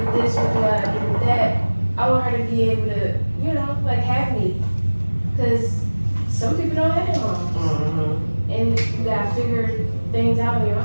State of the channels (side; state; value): both; inverted; correlation -1.00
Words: this? What do I do with that? I want her to be able to, you know, like have me, because some people don't have their moms. And you gotta figure things out on your